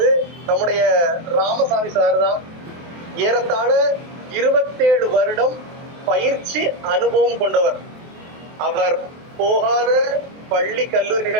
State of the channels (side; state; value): left; late; 23 ms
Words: நம்முடைய ராமசாமி சார் தான். ஏறத்தாழ 27 வருடம் பயிற்சி அனுபவம் கொண்டவர். அவர் போகாத பள்ளி